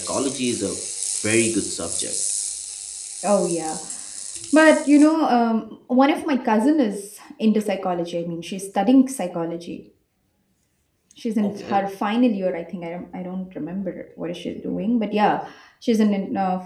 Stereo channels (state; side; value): identical; both; correlation 1.00